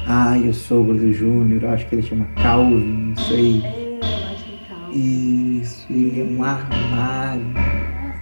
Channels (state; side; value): inverted; both; correlation -1.00